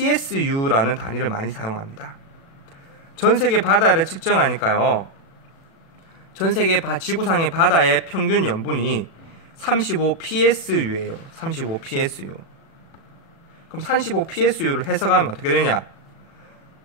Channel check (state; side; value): late; right; 36 ms